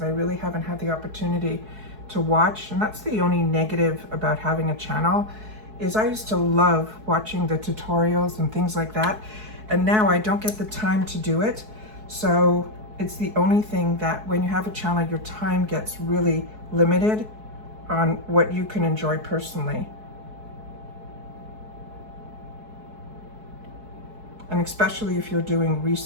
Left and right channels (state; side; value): late; left; 4.7 ms